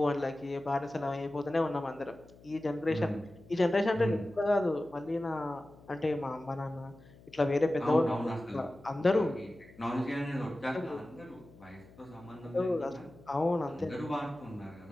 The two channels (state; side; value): noise; left; hum, 23 dB below the sound